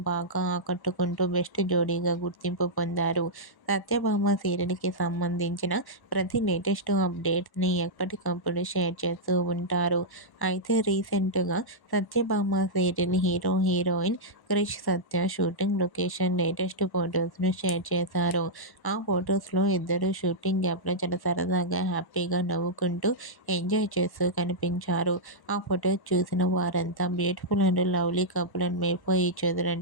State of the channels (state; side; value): late; right; 1.1 ms